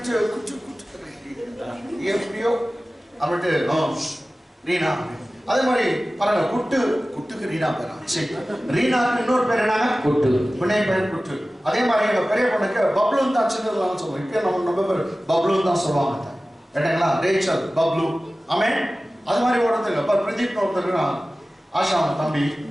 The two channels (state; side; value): normal; both; correlation 0.96